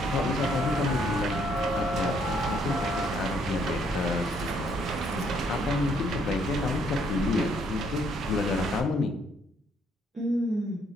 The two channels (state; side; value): normal; both; correlation 0.68